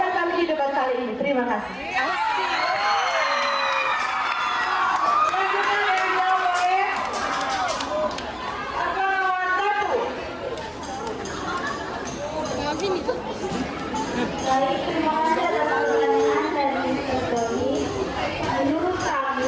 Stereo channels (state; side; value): identical; both; correlation 1.00